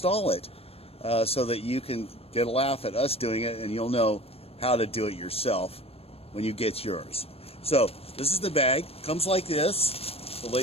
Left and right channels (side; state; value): right; late; 0.28 ms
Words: it so that you can get a laugh at us doing it, and you'll know how to do it yourself when you get yours. So this is the bag. Comes like this. The